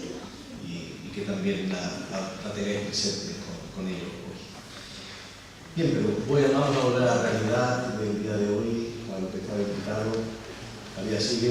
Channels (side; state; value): both; identical; correlation 1.00